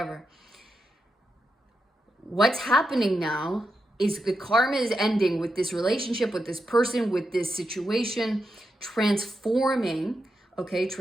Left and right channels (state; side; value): normal; both; correlation 0.86